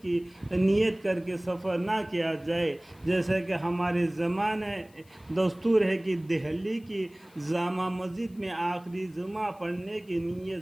کی نیت کر کے سفر نہ کیا جائے، جیسا کہ ہمارے زمانے دستور ہے کہ دہلی کی جامع مسجد میں آخری جمعہ پڑھنے کی نیت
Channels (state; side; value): noise; left; hiss, 30 dB below the sound